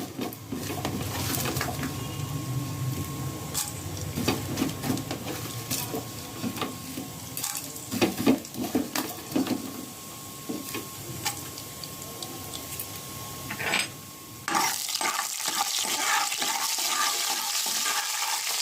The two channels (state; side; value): identical; both; correlation 1.00